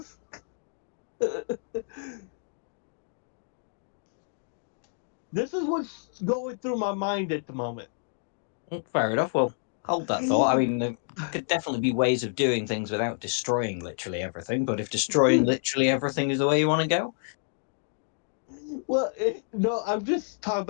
This is what's going through my mind at the moment. Fair enough. Well, hold that thought. I mean, there could definitely be ways of doing things without destroying literally everything. But if destroying literally everything is the way you want to go, Well, no, I'm just talking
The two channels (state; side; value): silent; right; digital silence